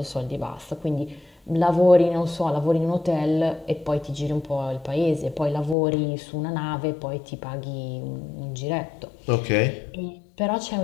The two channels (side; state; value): right; drops out; at 5.8 s